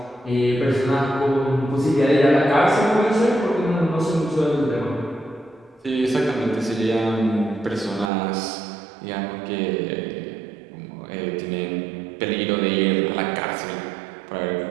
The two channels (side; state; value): left; drops out; at 8.1 s